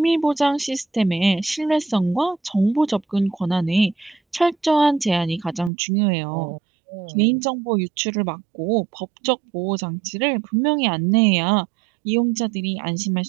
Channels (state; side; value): drops out; left; at 5.7 s